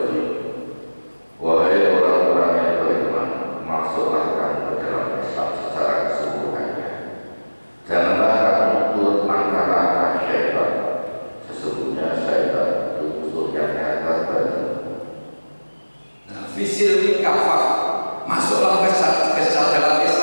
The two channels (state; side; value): inverted; both; correlation -1.00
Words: Wahai orang-orang yang beriman, masuklah kamu ke dalam Islam secara keseluruhannya. Janganlah kamu turut langkah-langkah syaitan. Sesungguhnya syaitan itu musuh yang nyata bagimu. Fisil kafah, masuklah ke dalam